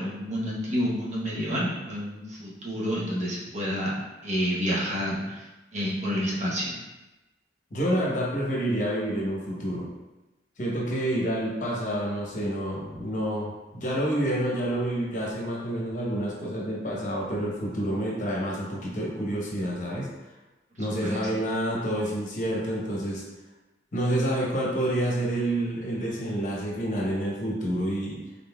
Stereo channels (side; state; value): both; normal; correlation 0.62